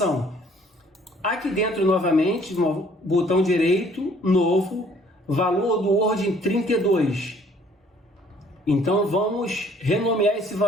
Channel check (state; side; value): normal; both; correlation 0.59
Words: Aqui dentro, novamente, no botão direito, novo, valor do Word 32. Então, vamos renomear esse